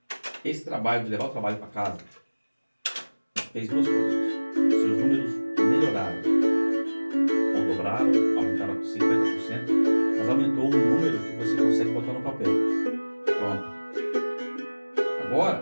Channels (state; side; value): inverted; both; correlation -1.00